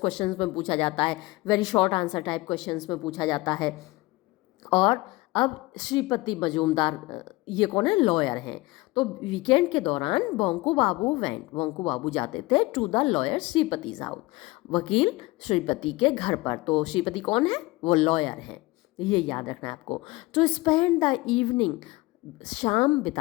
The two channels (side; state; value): right; quieter; 21.6 dB